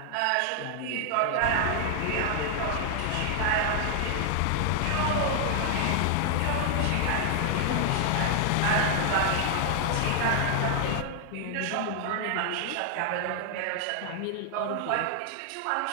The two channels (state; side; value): different; both; correlation 0.00